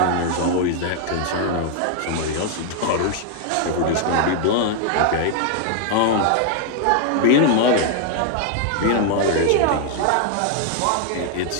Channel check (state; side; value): different; both; correlation 0.00